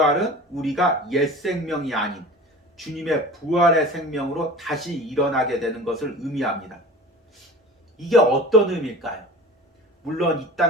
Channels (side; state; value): both; normal; correlation 0.38